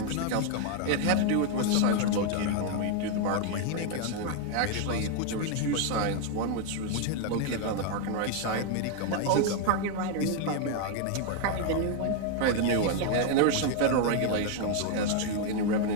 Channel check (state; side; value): different; both; correlation 0.00